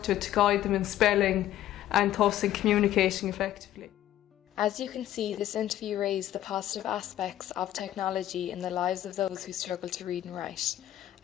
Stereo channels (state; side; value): quieter; right; 12.8 dB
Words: to guide them in spelling and thus in communicating effectively. As you can see, this interview raised the positive aspects of technology in the lives of those who struggle to read and write.